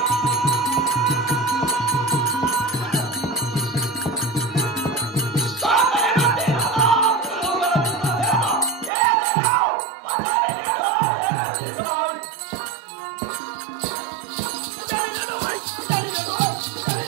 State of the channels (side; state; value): left; drops out; at 8.9 s